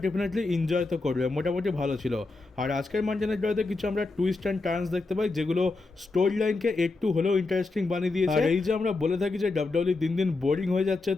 ডেফিনেটলি এনজয় তো করবে, মোটামুটি ভালো ছিল। আর আজকের মানডে নাইটে কিছু আমরা টুইস্ট অ্যান্ড টার্নস দেখতে পাই যেগুলো স্টোরি লাইনকে একটু হলেও ইন্টারেস্টিং বানিয়ে দিয়েছে। আর এই যে আমরা বলে থাকি যে ডাব্লিউডব্লিউ দিন দিন বোরিং হয়ে যাচ্ছে,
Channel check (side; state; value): right; quieter; 3.5 dB